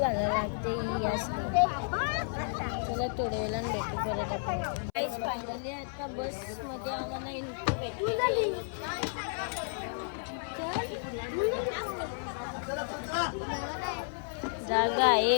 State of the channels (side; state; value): right; silent; 56 dB below the other